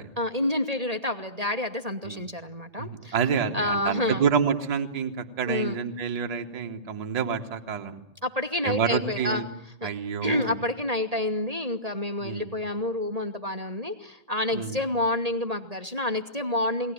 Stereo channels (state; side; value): late; left; 1.8 ms